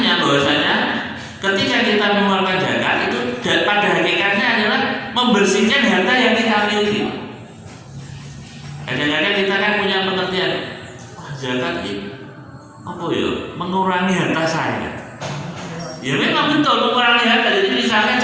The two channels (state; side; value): identical; both; correlation 1.00